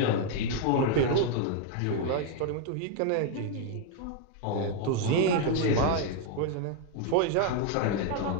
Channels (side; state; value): both; different; correlation 0.00